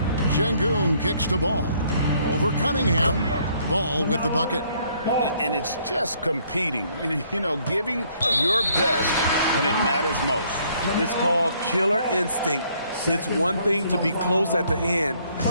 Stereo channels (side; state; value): both; inverted; correlation -0.65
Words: Şengün kicks the ball. Over Cunningham. Ball with the bucket. And it's just competing, you know, giving your best when it matters most. It's called killer instinct. It's one thing to be close at the end.